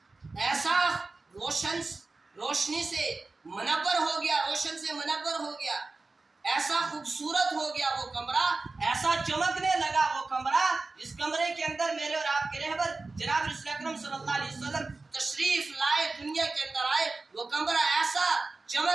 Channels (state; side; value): quieter; left; 3.6 dB